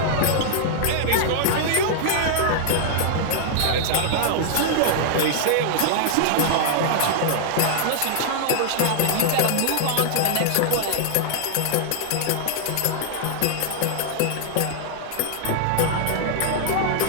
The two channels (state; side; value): different; both; correlation -0.01